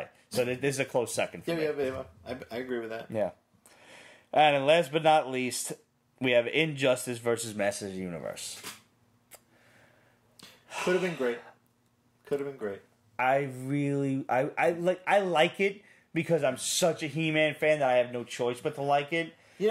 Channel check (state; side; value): identical; both; correlation 1.00